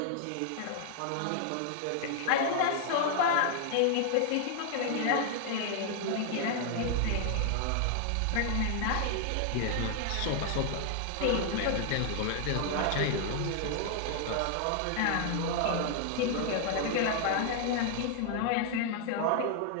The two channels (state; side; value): different; both; correlation 0.00